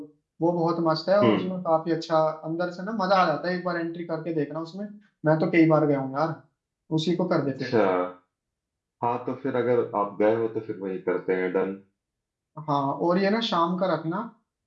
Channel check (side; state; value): both; identical; correlation 1.00